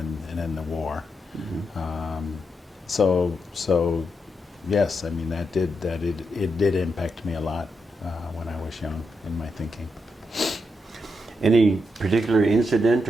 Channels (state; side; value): normal; both; correlation 0.83